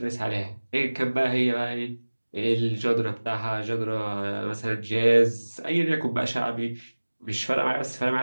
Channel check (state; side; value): inverted; both; correlation -1.00